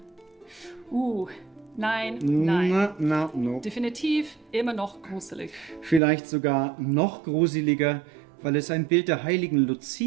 Nein. No. Definitiv immer noch gruselig. Vielleicht sogar noch gruseliger, weil es ein Bild der heiligen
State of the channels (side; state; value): left; drops out; at 6.0 s